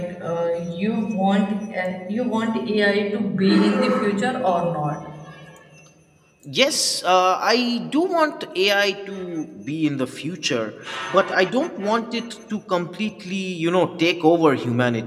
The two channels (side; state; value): both; identical; correlation 1.00